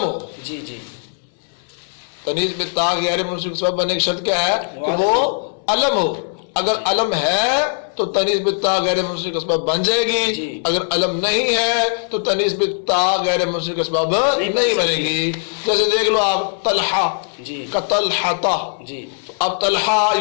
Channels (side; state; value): right; silent; 66 dB below the other